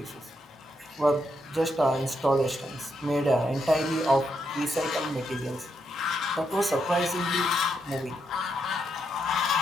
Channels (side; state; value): both; normal; correlation 0.80